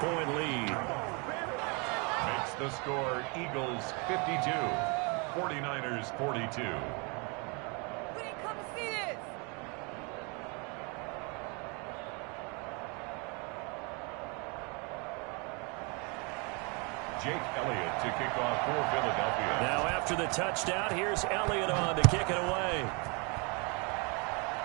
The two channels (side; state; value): left; quieter; 32.0 dB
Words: lead. Makes the score Eagles 52, 49ers 42. We didn't come to see this. Jake Elliott to kick off for Philadelphia. Now after the touchdown, here's Elliott on to kick it away.